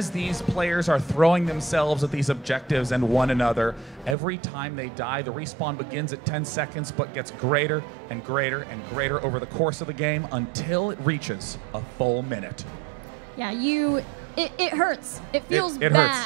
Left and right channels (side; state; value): left; drops out; at 4.2 s